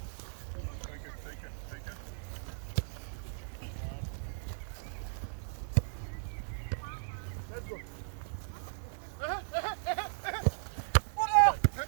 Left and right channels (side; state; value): left; silent; digital silence